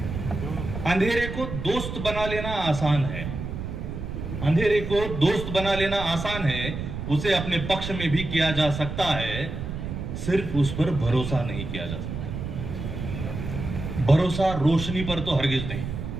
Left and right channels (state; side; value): noise; right; rumble, 6 dB below the sound